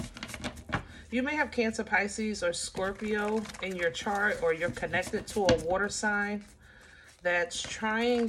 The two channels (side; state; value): both; identical; correlation 1.00